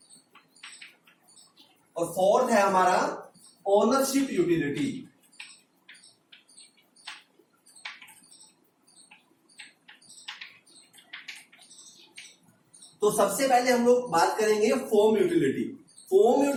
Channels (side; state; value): both; identical; correlation 1.00